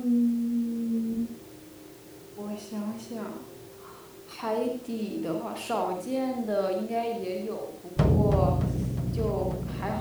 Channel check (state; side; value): identical; both; correlation 1.00